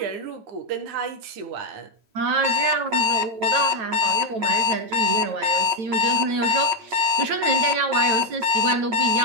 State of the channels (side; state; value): left; late; 9.1 ms